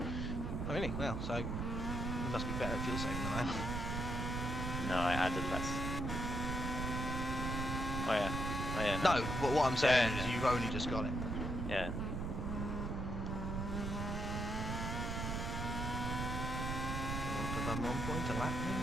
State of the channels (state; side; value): noise; right; rumble, 2 dB below the sound